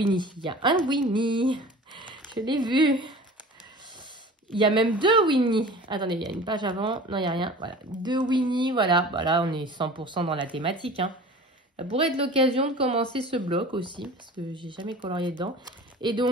Il y a un Winnie. Je l'ai vu. Il y a même 2 Winnie. Attendez, il y a une page avant. Non, il n'y a rien. Voilà, 2 Winnie. Voilà, voilà, on est 100% dans la thématique. Hein. Ça pourrait être l'occasion de commencer ce bloc aussi parce que j'ai jamais colorié dedans. Et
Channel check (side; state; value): both; normal; correlation 0.40